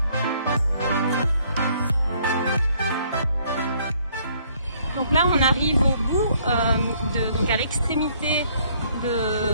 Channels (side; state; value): both; inverted; correlation -0.64